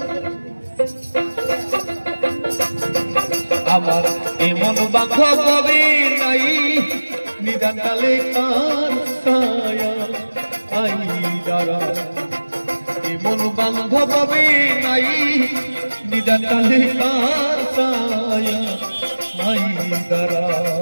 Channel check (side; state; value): both; inverted; correlation -1.00